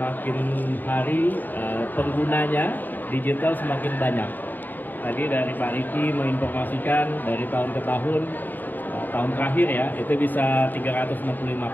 hari penggunanya digital semakin banyak. Tadi dari Pak Riki menginformasikan dari tahun ke tahun, tahun terakhir ya itu bisa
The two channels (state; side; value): late; right; 0.089 ms